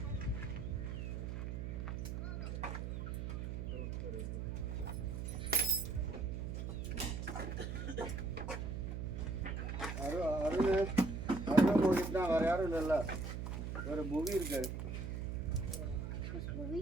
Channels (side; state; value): right; noise; hum, 4 dB below the sound